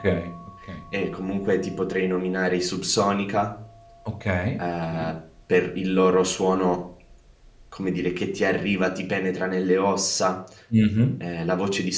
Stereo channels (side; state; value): both; identical; correlation 1.00